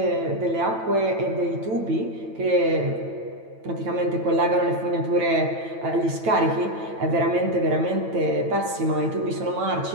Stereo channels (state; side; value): late; left; 9.0 ms